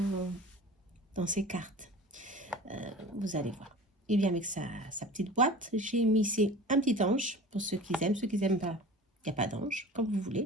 ses cartes. Vous allez voir. Il vient avec sa petite boîte. J'ai mis ici un petit ange pour ceux qui aiment. Ceux qui n'aiment pas, il n'y a pas d'ange, comme vous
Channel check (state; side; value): normal; both; correlation 0.39